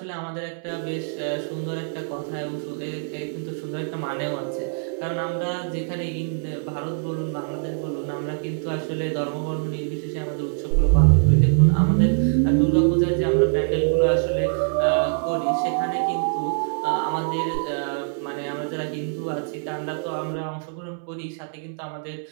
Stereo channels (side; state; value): left; silent; 61 dB below the other